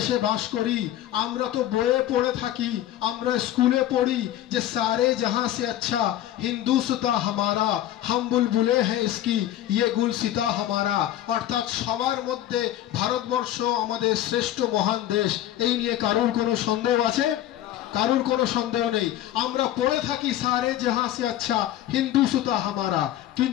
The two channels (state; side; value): quieter; right; 12.8 dB